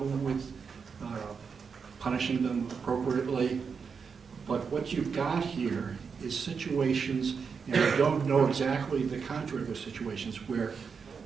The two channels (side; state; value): left; quieter; 5.8 dB